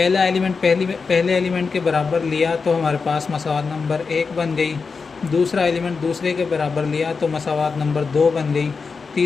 एलिमेंट पहले एलिमेंट के बराबर लिया तो हमारे पास मसावात नंबर 1 बन गई। दूसरा एलिमेंट दूसरे के बराबर लिया तो मसावात नंबर 2 बन गई।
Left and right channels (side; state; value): right; quieter; 4.9 dB